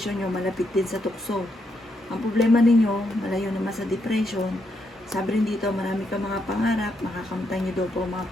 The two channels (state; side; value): normal; both; correlation 0.79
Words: nyo malapit din sa tukso. Ang problema ninyo, malayo naman sa depression. Sabi rin dito, marami ka mga pangarap, makakamtan nyo daw po ang mga